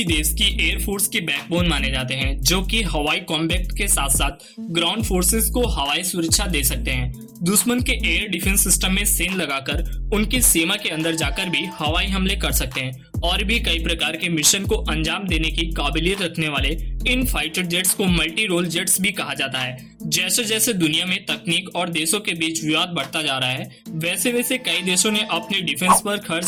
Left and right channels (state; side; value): identical; both; correlation 1.00